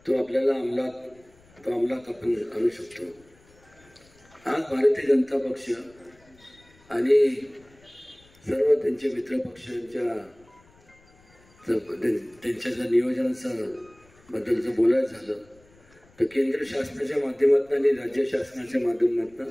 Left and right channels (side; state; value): left; noise; rumble, 29 dB below the sound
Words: तो आपल्याला अंमलात आपण आणू शकतो. आज भारतीय जनता पक्ष आणि सर्व त्यांचे मित्र पक्षांच्या त्यांच्या जर नियोजनाचं बद्दलचं बोलायचं झालं तर केंद्र शासनाच्या माध्यमातून आणि राज्य शासनाच्या